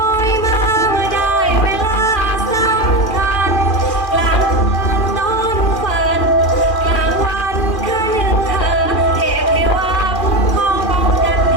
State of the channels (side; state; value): right; late; 2.4 ms